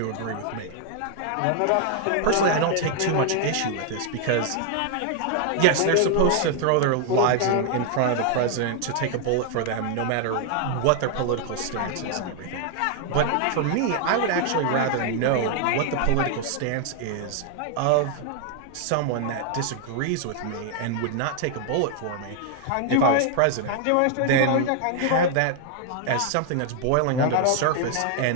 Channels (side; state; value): both; different; correlation 0.00